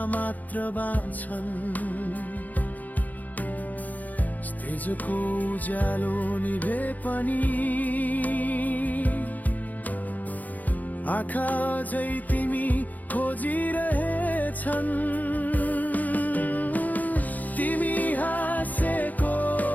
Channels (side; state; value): right; late; 0.080 ms